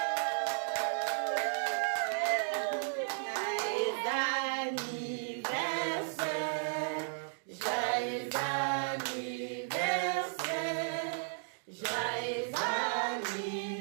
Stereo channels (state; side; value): silent; left; digital silence